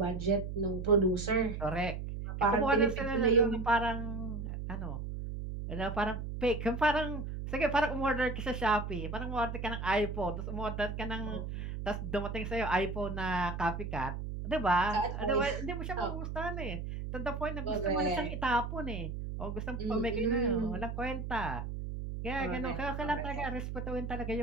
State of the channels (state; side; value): noise; right; hum, 5 dB below the sound